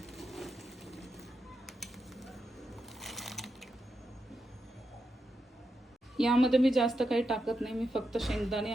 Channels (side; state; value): both; normal; correlation 0.86